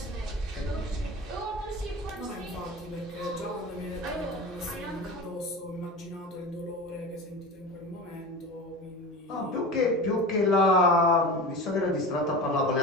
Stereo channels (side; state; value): both; normal; correlation 0.30